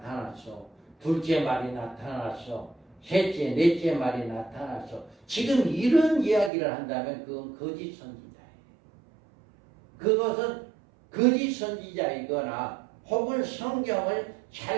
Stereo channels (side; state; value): left; drops out; at 6.5 s